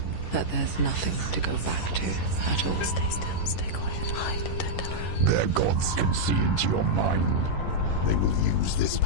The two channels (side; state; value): right; late; 11 ms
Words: That there's nothing to go back to at all. Stay still, stay quiet, hide, don't tell her. Their gods can see into your mind. They will use this